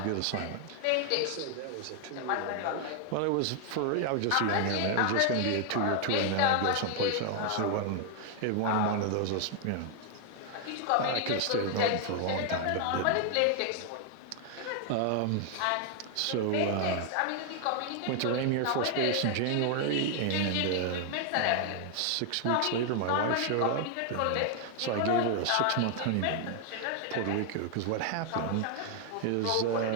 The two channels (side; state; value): both; different; correlation 0.00